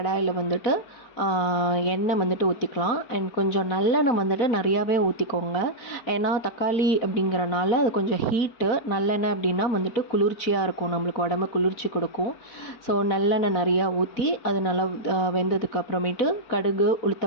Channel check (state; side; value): late; right; 4.4 ms